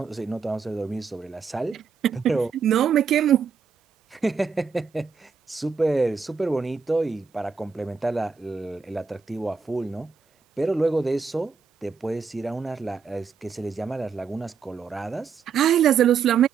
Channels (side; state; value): left; quieter; 5.8 dB